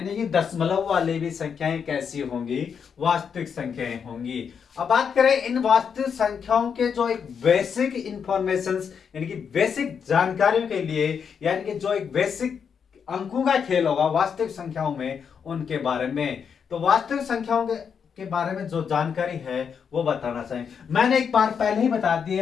कि दशमलव वाली भी संख्याएं कैसी होंगी? वास्तविक संख्याएं होंगी। अब बात करें इन वास्तविक संख्याओं के जो एक बेसिक इंफॉर्मेशंस, यानी कि बेसिक जानकारियों के लिए, यानी कि जो एक बेसिक अंकों का खेल होगा वास्तविक संख्याओं में, उनके बारे में। तो वास्तविक संख्याओं के के बारे में जो जानकारी है वो बताना चाहिए। मैंने एक बार पहले ही बता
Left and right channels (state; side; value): quieter; right; 6.9 dB